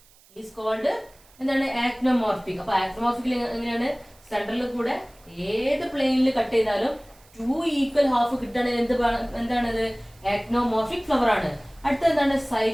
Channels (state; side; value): noise; right; hiss, 28 dB below the sound